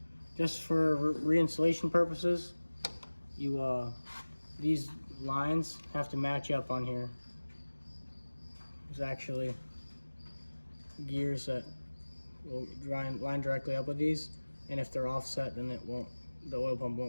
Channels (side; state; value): both; inverted; correlation -1.00